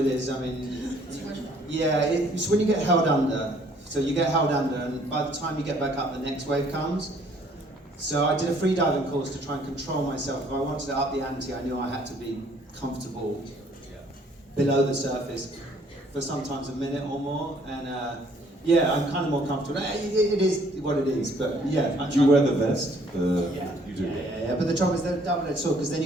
is. I mean, yeah, it's when you get held under. So you get held under, and by the time you get back up, the next wave comes. So I did a free diving course to try and control myself. If I wanted to up the ante, I knew I had to be comfortable below the surface for sometimes a minute or more. And yeah, I'm kind of more comfortable. It is what it is, but yeah. Do you wear the vest? Yeah. You do. Yeah. But the trouble is they're double-edged sword because then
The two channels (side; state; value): both; normal; correlation 0.61